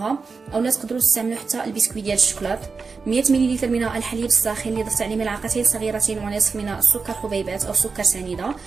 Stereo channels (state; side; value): quieter; left; 4.7 dB